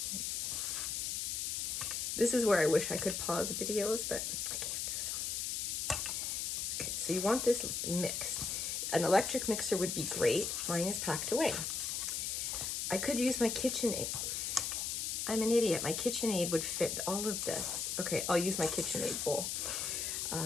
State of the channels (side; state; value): left; noise; hiss, 1 dB below the sound